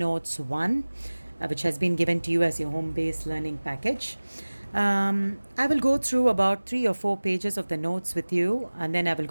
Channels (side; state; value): both; inverted; correlation -1.00